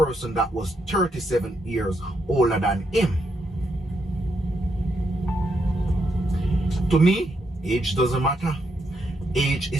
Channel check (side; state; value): both; normal; correlation 0.79